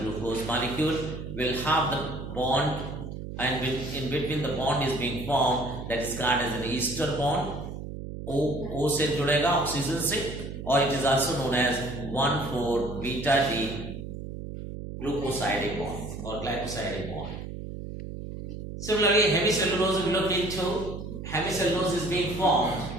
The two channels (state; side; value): noise; right; hum, 8 dB below the sound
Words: glucose molecule will have the bond, and in between the bond is being formed, that is called as an ester bond. O से जुड़ेगा oxygen से, or it is also known as 1,4-beta-D glucosidic bond or glycosidic bond. Similarly, hemicellulose we look into. Hemicellulose is being formed